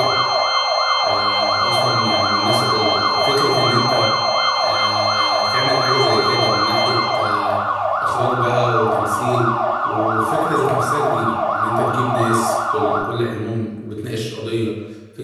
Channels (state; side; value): identical; both; correlation 1.00